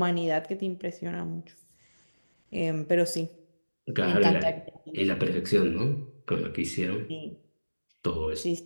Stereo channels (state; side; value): inverted; both; correlation -1.00